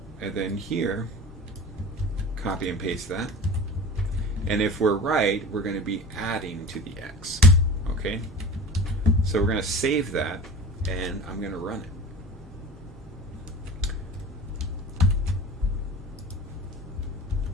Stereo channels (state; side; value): normal; both; correlation 0.37